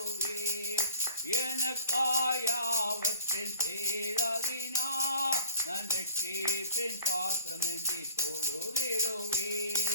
எனக்காயாவற்றில் செய்தவினார் அந்த சேப்பின் பாத்திரம் ஏந்தி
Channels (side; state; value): both; inverted; correlation -0.46